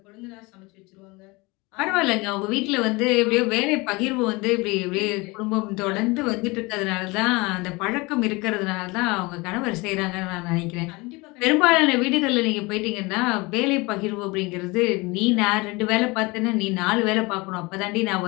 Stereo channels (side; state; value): right; quieter; 24.6 dB